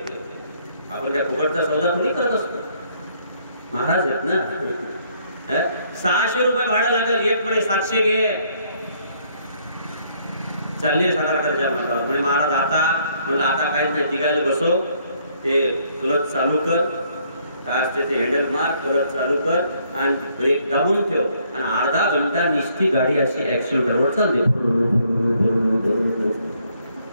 आपण त्या फुकटचा सौदा थोडी करत असतो, महाराज आहेत ना. 600 रुपये भाडं लागेल. एक म्हणे 700 घे. चालले सातारकरच्या मठावर. म्हणे महाराज आता. म्हणलं आता काहीच नाही, तिघायला बसव. ते क्लच चालू कर, काय असते ते हँडल मार, क्लच चालू कर आणि ब्रेक दाबून ठेव. आणि अर्धा घंटा निस्ती गाडी अशी ऍक्सिलेटरवर चालते.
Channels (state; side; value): inverted; both; correlation -0.67